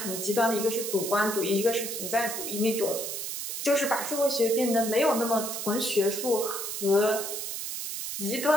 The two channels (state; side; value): noise; right; hiss, 5 dB below the sound